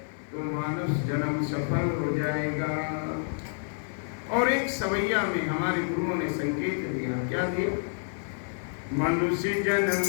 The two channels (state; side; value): silent; right; 58 dB below the other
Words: तो मानव जन्म सफल हो जाएगा। और एक सवैया में हमारे गुरुओं ने संकेत दिया। क्या दिया? मनुष्य